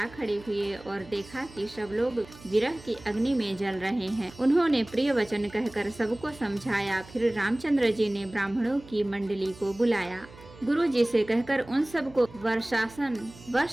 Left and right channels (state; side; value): noise; right; hum, 20 dB below the sound